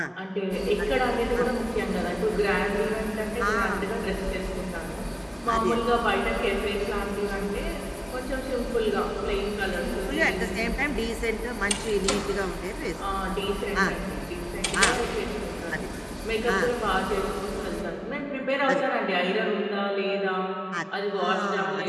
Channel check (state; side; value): identical; both; correlation 1.00